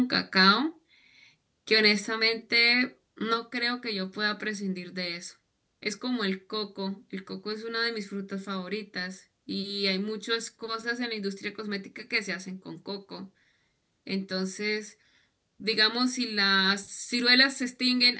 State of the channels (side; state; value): both; identical; correlation 1.00